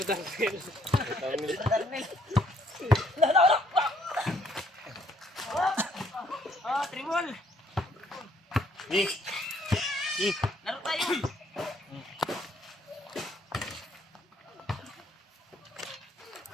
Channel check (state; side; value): normal; both; correlation 0.66